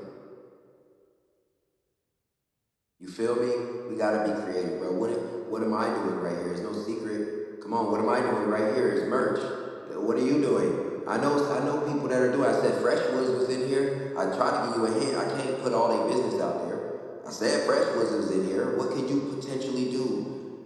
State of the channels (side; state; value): both; identical; correlation 1.00